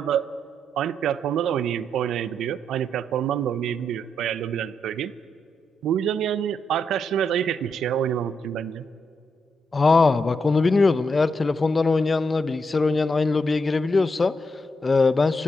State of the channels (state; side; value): normal; both; correlation 0.80